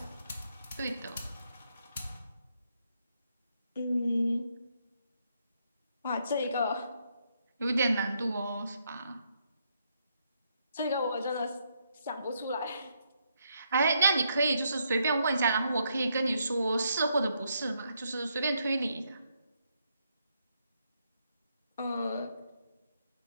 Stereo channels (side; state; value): both; inverted; correlation -0.76